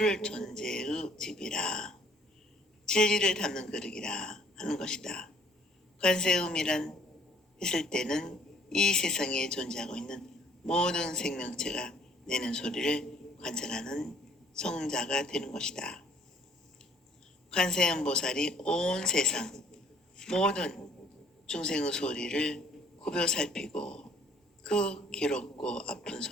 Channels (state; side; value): normal; both; correlation 0.59